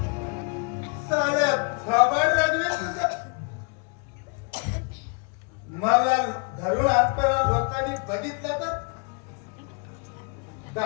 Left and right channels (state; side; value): quieter; right; 36.2 dB